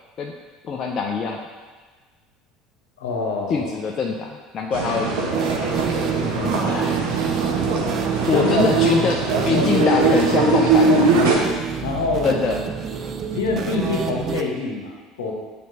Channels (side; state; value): both; normal; correlation 0.34